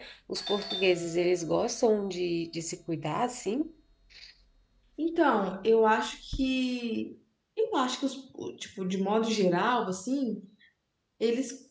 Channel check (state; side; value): identical; both; correlation 1.00